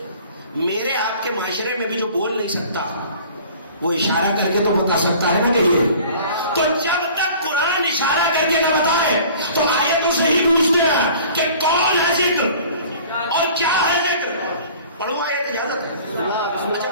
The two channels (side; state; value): both; inverted; correlation -0.47